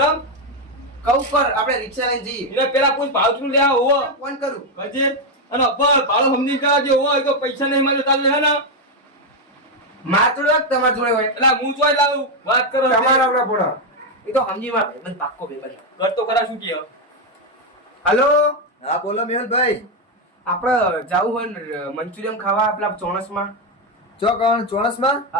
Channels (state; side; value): normal; both; correlation 0.05